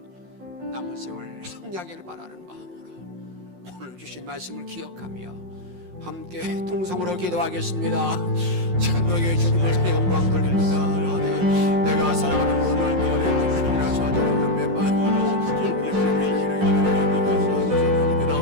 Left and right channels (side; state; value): left; late; 5.6 ms